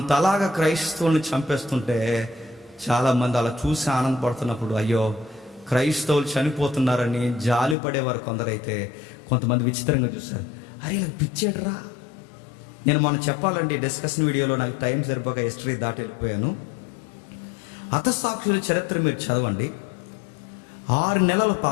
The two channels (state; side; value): drops out; right; at 7.8 s